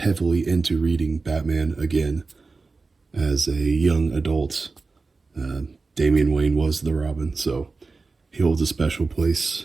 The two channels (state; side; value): quieter; left; 4.0 dB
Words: into reading Batman again as a young adult. Damian Wayne was the Robin, so he holds a special place